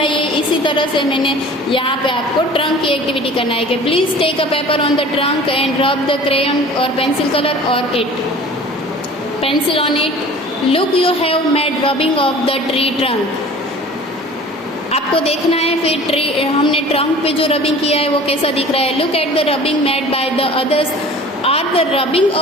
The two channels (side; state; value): both; normal; correlation 0.44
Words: है, इसी तरह से मैंने यहाँ पे आपको ट्रंक की एक्टिविटी करना है कि please take a paper on the trunk and rub the crayon और पेंसिल कलर और it pencil on it. Look you have made rubbing of the tree trunk. आपको देखना है फिर ट्री, हमने ट्रंक पे जो रबिंग किया है वो कैसा दिख रहा है। Look at the rubbing made by the others are the rubbing